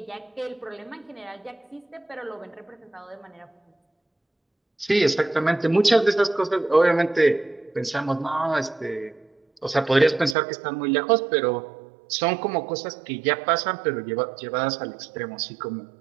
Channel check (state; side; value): drops out; left; at 10.4 s